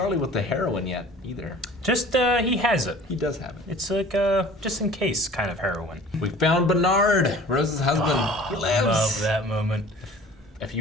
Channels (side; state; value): both; normal; correlation 0.46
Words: with the heroin yet, either. Just, he has it. He does have it. It's like, just in case kind of heroin. We found Bernard, Rose's husband. He lives. Love that moment. A